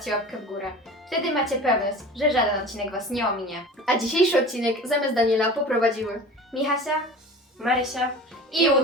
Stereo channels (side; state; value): both; normal; correlation 0.38